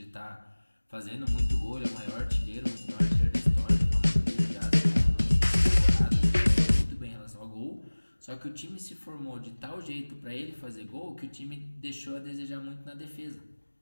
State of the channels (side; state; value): both; inverted; correlation -1.00